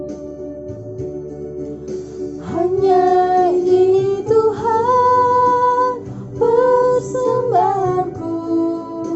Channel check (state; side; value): identical; both; correlation 1.00